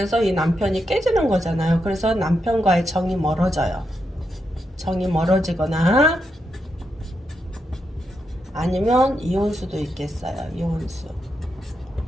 이 남편이 깨지는 거잖아요. 그래서 남편과의 정이 멀어져요. 정이 멀어지거나 아니면 이혼수도 있겠어요. 이혼수.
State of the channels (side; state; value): both; normal; correlation 0.84